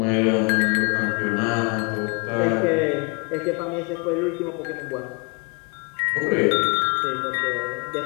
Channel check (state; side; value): quieter; right; 31.2 dB